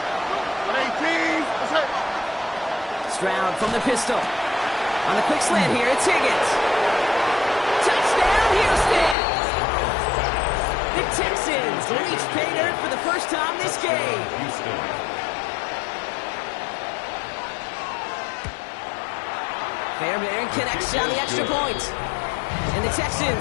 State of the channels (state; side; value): drops out; right; at 9.2 s